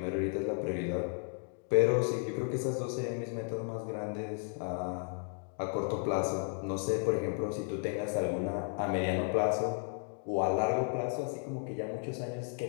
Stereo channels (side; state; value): right; silent; 55 dB below the other